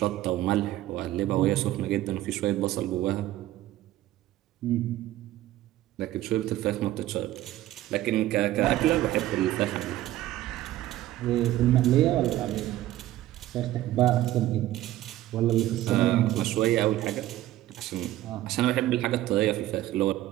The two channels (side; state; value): left; quieter; 14.7 dB